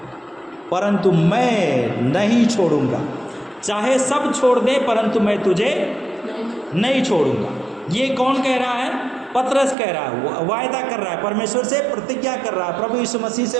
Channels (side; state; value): left; drops out; at 9.8 s